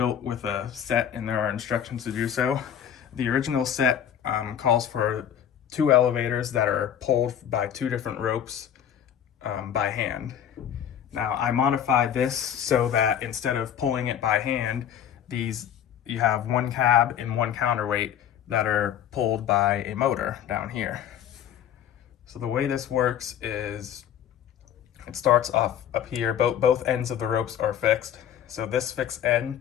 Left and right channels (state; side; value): quieter; right; 9.6 dB